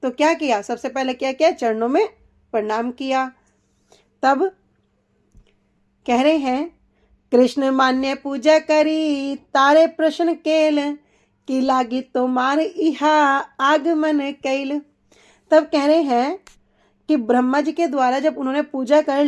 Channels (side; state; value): both; identical; correlation 1.00